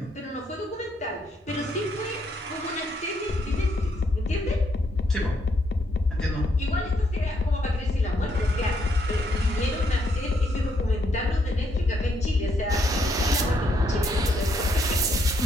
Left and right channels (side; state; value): both; normal; correlation 0.74